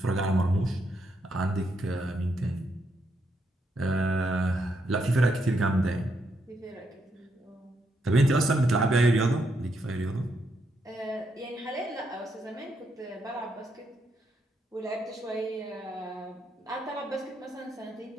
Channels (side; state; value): both; normal; correlation 0.78